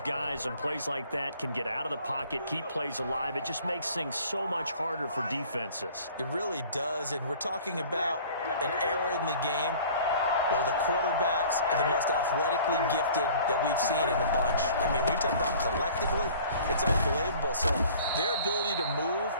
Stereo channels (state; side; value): inverted; both; correlation -0.49